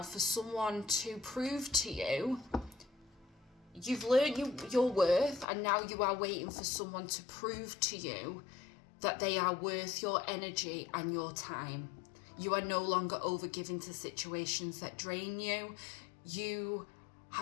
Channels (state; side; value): drops out; right; at 5.5 s